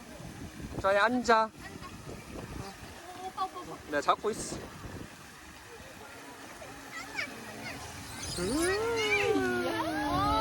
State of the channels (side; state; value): both; identical; correlation 1.00